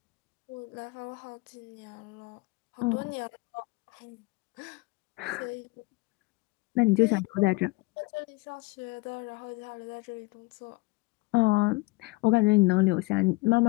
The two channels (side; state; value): right; quieter; 24.1 dB